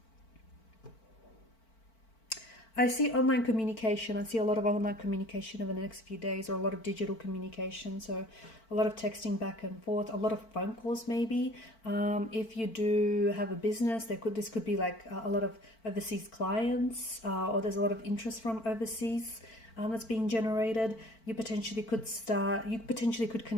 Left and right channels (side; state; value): right; late; 4.5 ms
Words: I see online communication. I see a lot of online communication over the next few days, or a lot of digital communication. So a lot of texting back and forth, a lot of phone calls maybe. If you do have a business, this could be like a lot of overseas clients, or there's a lot of interest from overseas that's being generated. You potentially could